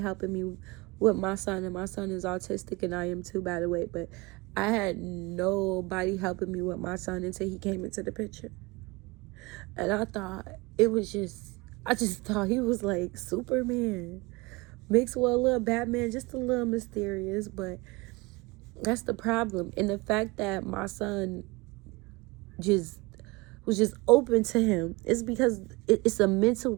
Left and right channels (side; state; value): left; quieter; 24.4 dB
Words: helping me with my son, and my son is autistic, and I am too, by the way. But I had nobody helping me with my son until he came into the picture. And I just thought he was like Superman mixed with a little Batman, just a little mysterious. But that's the problem. And the fact that my son was just open to him is because it's a